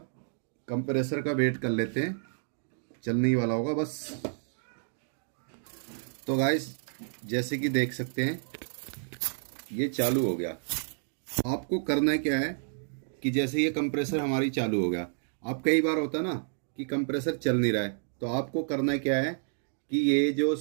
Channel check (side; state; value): left; silent; digital silence